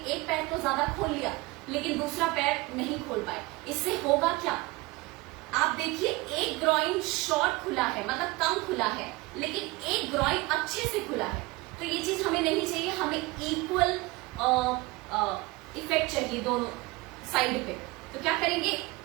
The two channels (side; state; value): left; quieter; 22.3 dB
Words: पैर तो ज्यादा खोल लिया लेकिन दूसरा पैर नहीं खोल पाए। इससे होगा क्या, आप देखिए एक ग्रॉइन शॉर्ट खुला है, मतलब कम खुला है, लेकिन एक ग्रॉइन अच्छे से खुला है। तो ये चीज हमें नहीं चाहिए, हमें इक्वल इफेक्ट चाहिए दोनों साइड पे। तो क्या करेंगे,